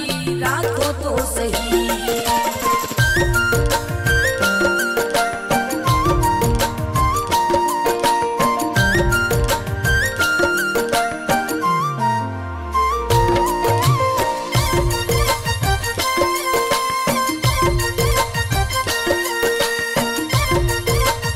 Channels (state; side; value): identical; both; correlation 1.00